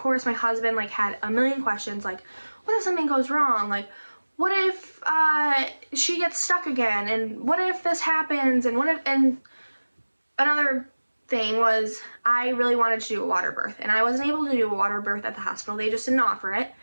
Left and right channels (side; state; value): both; inverted; correlation -1.00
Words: my husband like had a million questions, like, what if something goes wrong? Like, what if she gets stuck again? And what if this happens? And what if, and another thing was I really wanted to do a water birth, and I wasn't able to do a water birth at the hospital. They just didn't offer it.